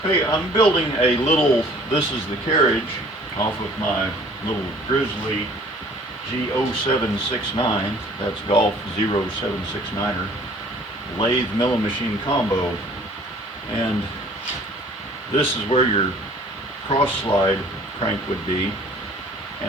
Hey, I'm building a little, this is the carriage off of my little Grizzly G0769, that's Golf 0769er, lathe milling machine combo. And this is where your cross slide crank would be.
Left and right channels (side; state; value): both; normal; correlation 0.53